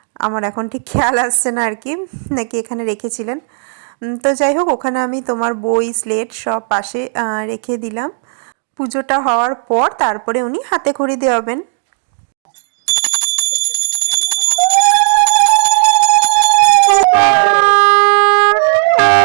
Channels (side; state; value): left; silent; digital silence